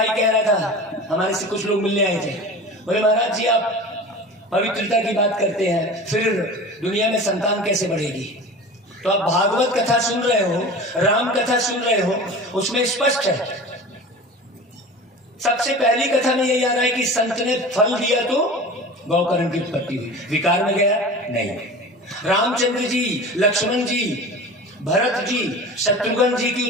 कह रहा था, हमारे से कुछ लोग मिलने आए थे, बोले महाराज जी आप पवित्रता की बात करते हैं, फिर दुनिया में संतान कैसे बढ़ेगी? तो आप भागवत कथा सुन रहे हो, राम कथा सुन रहे हो, उसमें स्पष्ट है। सबसे पहली कथा में यही आ रहा है कि संत ने फल दिया तो गौकर्ण की उत्पत्ति हुई, विकार में गया नहीं। रामचंद्र जी, लक्ष्मण जी, भरत जी, शत्रुघ्न जी की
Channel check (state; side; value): normal; both; correlation 0.35